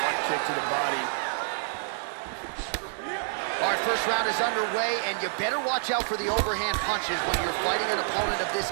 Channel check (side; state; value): left; silent; digital silence